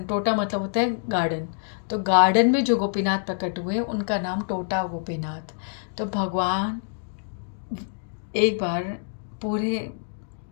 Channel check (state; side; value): silent; right; digital silence